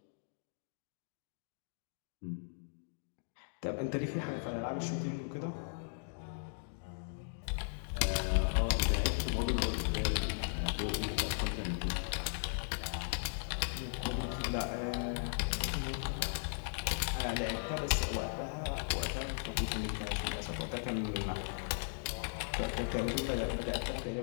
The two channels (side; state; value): right; silent; digital silence